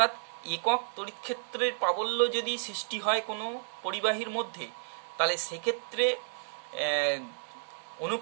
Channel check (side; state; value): left; silent; digital silence